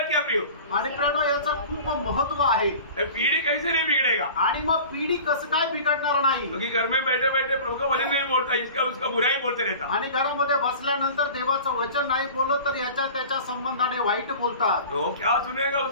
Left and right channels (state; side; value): inverted; both; correlation -0.40